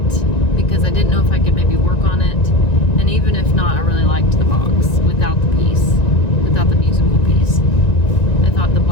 because I didn't know if I could maybe work on it. And even if not, I really liked the box without the piece, without the musical piece. I thought the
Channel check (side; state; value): right; late; 1.9 ms